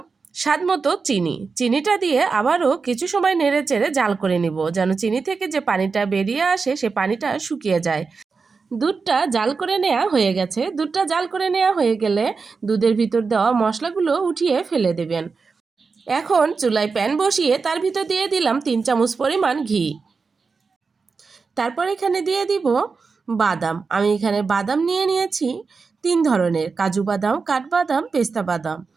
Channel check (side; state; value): left; quieter; 4.8 dB